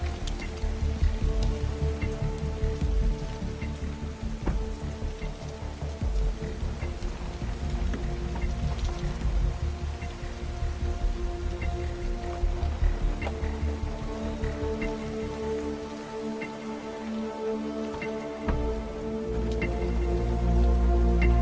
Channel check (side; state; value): both; identical; correlation 1.00